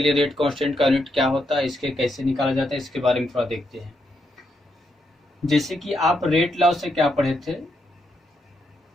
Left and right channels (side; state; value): both; normal; correlation 0.80